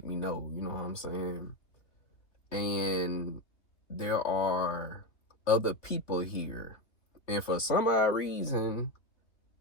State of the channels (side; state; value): right; late; 3.1 ms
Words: me know, you know what I'm saying? and there are other people here, and for some odd reason